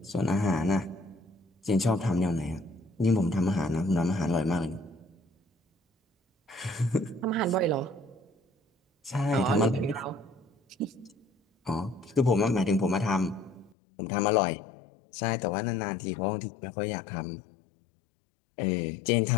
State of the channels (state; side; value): drops out; right; at 13.8 s